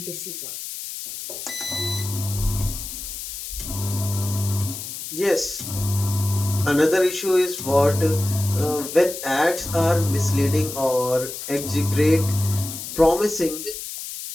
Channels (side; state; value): left; noise; hiss, 8 dB below the sound